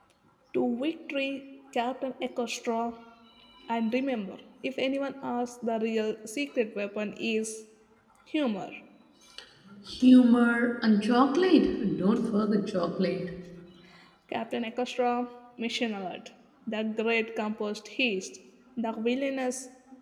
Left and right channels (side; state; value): both; identical; correlation 1.00